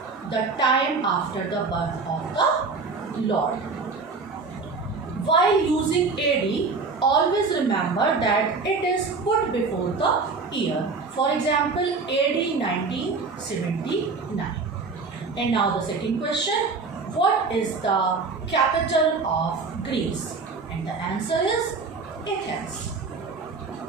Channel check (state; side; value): quieter; left; 4.4 dB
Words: the time after the birth of the Lord. While using AD, always remember that it is put before the year. For example, AD 1979. And now the second question, what is the capital of Greece? And the answer is Athens.